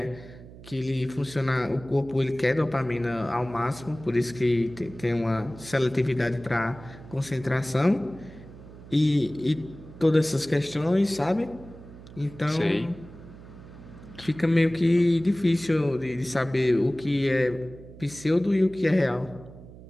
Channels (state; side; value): noise; right; hum, 18 dB below the sound